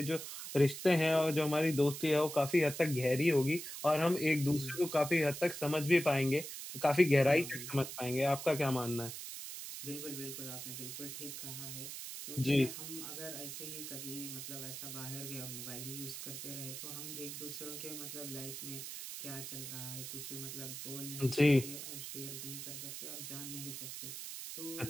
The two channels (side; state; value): right; noise; hiss, 8 dB below the sound